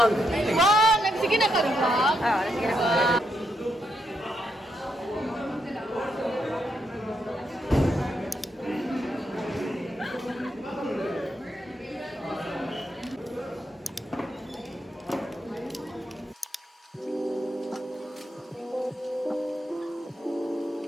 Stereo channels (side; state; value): both; normal; correlation 0.80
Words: Wow! Sige na ka vlog. Ah, sige na.